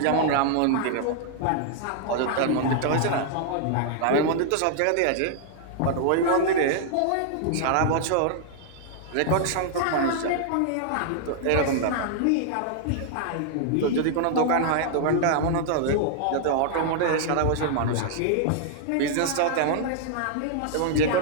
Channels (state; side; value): different; both; correlation -0.01